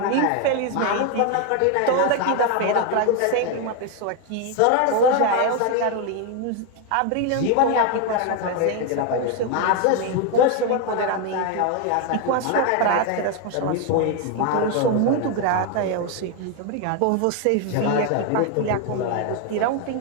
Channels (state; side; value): different; both; correlation 0.01